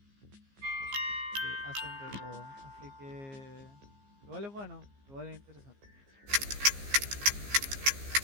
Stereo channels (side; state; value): left; late; 15 ms